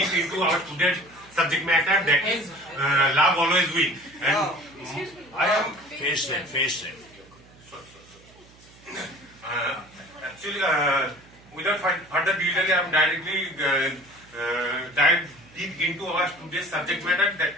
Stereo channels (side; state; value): right; noise; hum, 25 dB below the sound